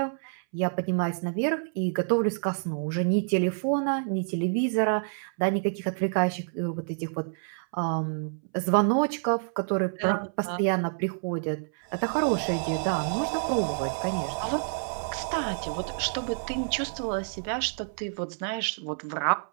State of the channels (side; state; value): left; silent; 59 dB below the other